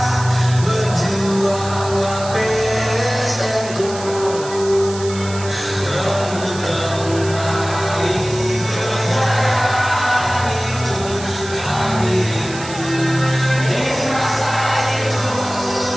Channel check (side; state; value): right; noise; hiss, 13 dB below the sound